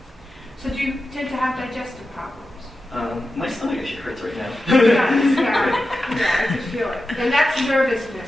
So do you tend to have digestive problems? My stomach actually hurts right now. Yeah, I can feel it. And that's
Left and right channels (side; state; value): both; normal; correlation 0.92